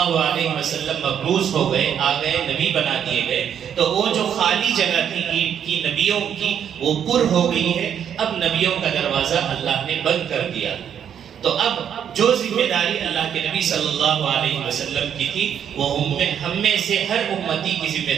علیہ وسلم مبعوث ہو گئے، آ گئے، نبی بنا دیے گئے، تو وہ جو خالی جگہ تھی اینٹ کی نبیوں کی وہ پر ہو گئی ہے، اب نبیوں کا دروازہ اللہ نے بند کر دیا۔ تو اب جو ذمہ داری اللہ کے نبی صلی اللہ علیہ وسلم کی تھی وہ ہم میں سے ہر امتی کی ذمہ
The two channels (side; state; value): left; quieter; 8.8 dB